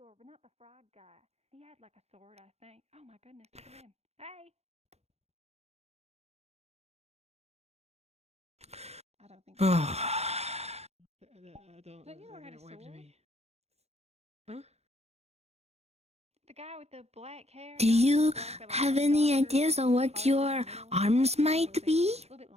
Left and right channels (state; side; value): late; left; 0.31 ms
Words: but not the frog guy. He had like a sword, I think. Oh my goodness, look at him. Hey! I don't think so. Theodore had a sword? Huh? The guy with the black hair. Do you have any ideas on what your arms might be? A little bit